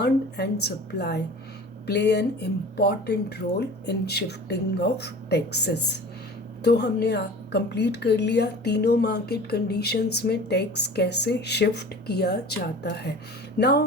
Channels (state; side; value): normal; both; correlation 0.40